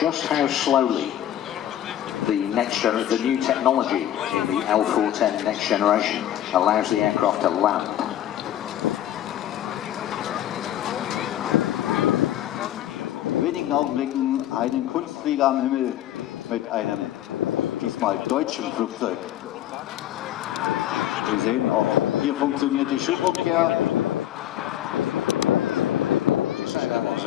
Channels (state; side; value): quieter; right; 11.9 dB